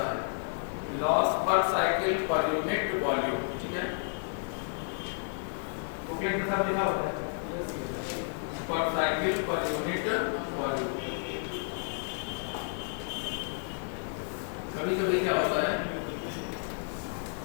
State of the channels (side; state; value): right; silent; digital silence